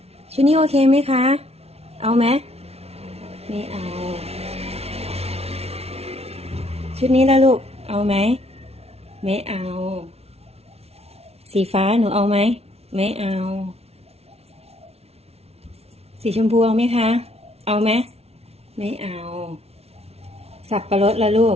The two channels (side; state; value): left; late; 0.30 ms